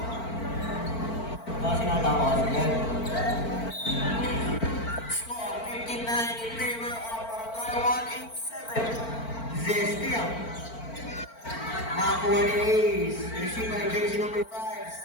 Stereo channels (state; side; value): late; right; 4.4 ms